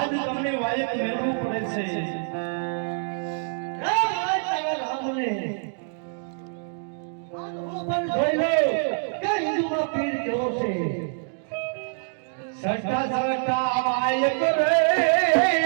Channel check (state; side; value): silent; left; digital silence